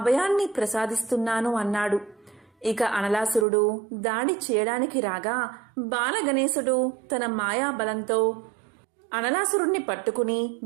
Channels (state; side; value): drops out; left; at 3.5 s